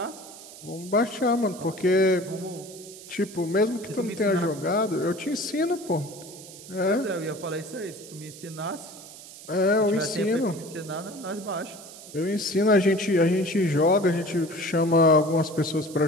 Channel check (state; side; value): noise; right; hiss, 16 dB below the sound